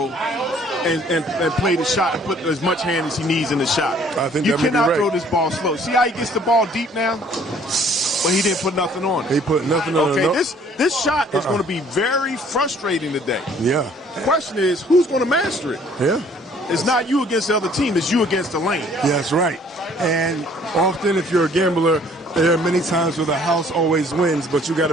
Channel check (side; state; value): both; normal; correlation 0.58